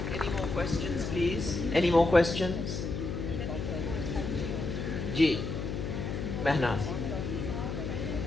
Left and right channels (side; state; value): left; noise; hum, 4 dB below the sound